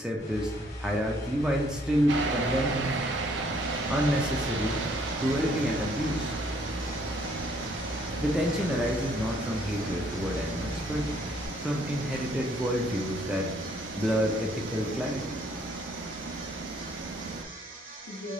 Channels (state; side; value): normal; both; correlation 0.65